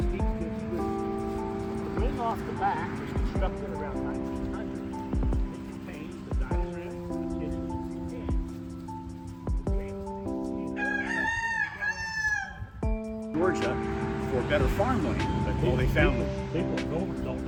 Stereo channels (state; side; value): identical; both; correlation 1.00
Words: The wing off the back was constructed around 1900. It contains the dining room, the kitchen, and Georgia for better farmland, but well, they found them. People don't